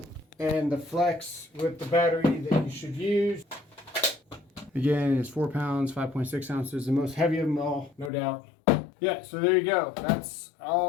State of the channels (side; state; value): right; drops out; at 8.1 s